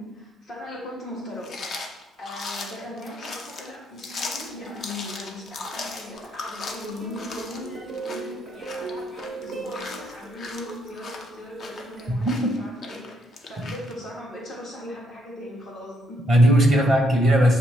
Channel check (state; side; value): normal; both; correlation 0.74